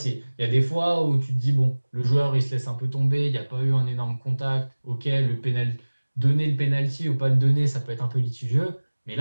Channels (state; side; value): inverted; both; correlation -1.00